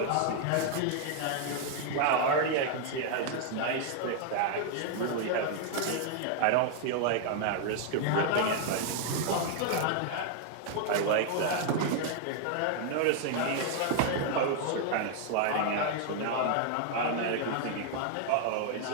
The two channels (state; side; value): different; both; correlation 0.00